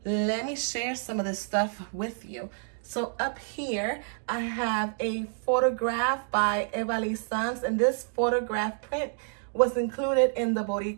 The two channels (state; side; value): silent; left; 59 dB below the other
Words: Let me share some of this stuff with you. So up here, I have a photograph by Evaliz, and this photograph print was included in the